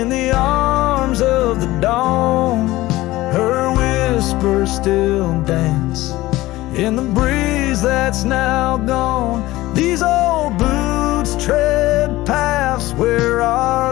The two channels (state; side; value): quieter; right; 17.7 dB